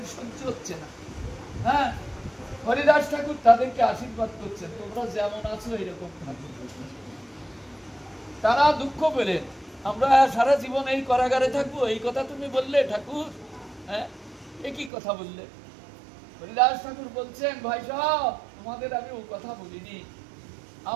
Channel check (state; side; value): drops out; left; at 14.9 s